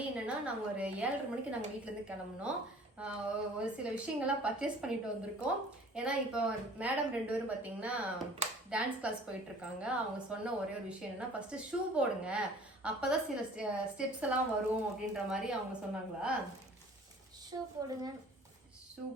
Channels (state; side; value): normal; both; correlation 0.50